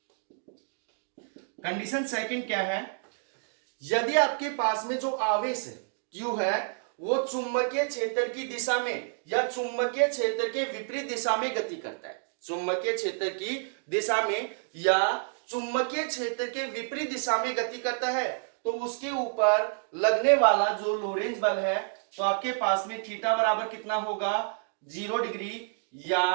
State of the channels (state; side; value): silent; left; digital silence